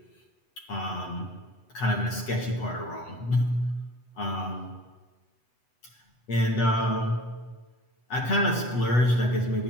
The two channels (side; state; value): right; late; 8.0 ms